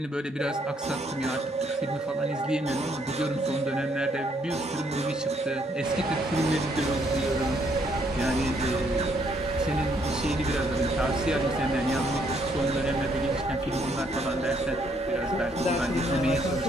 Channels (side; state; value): both; normal; correlation 0.70